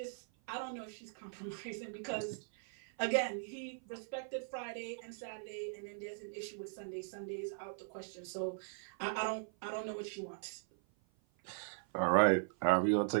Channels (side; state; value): left; silent; 52 dB below the other